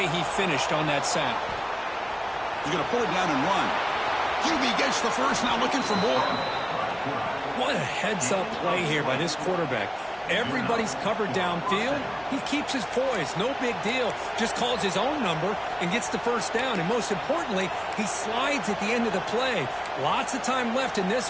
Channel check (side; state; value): both; identical; correlation 1.00